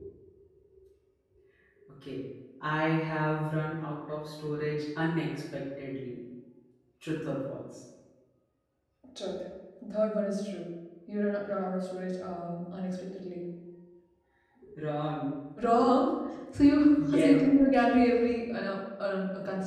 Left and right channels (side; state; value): both; identical; correlation 1.00